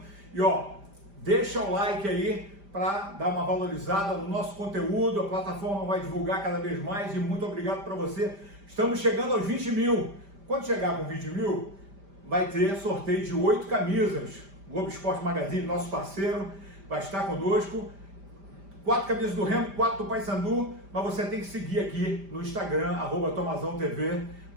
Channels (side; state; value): left; late; 5.0 ms